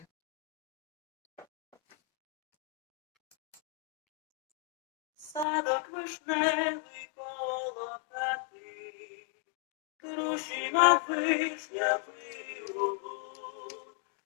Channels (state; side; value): drops out; right; at 5.5 s